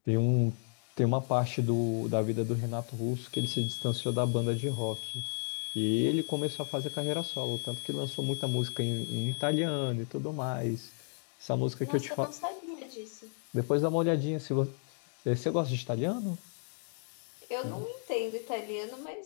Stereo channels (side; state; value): right; silent; 56 dB below the other